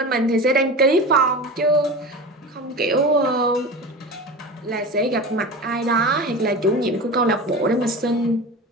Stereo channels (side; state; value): both; normal; correlation 0.30